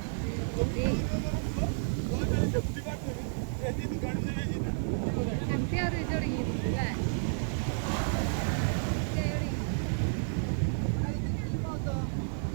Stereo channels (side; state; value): left; silent; digital silence